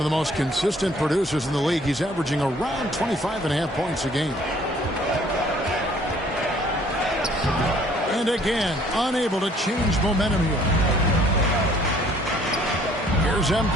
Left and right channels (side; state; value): both; normal; correlation 0.58